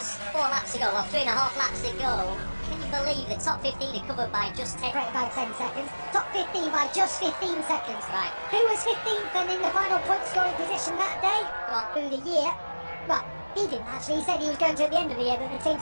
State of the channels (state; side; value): inverted; both; correlation -1.00